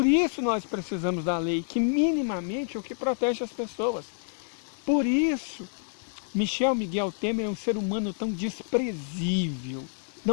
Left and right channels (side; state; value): right; silent; 59 dB below the other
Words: isso nós precisamos da lei, que minimamente é o que protege as pessoas. Por isso, Michel Miguel Temer é um ser humano tão desprezível,